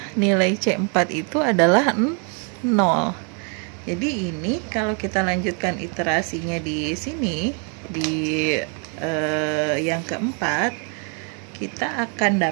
nilai C4 itu adalah 0. Jadi ini kalau kita lanjutkan iterasinya di sini, di yang keempat, kita akan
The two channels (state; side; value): quieter; left; 37.8 dB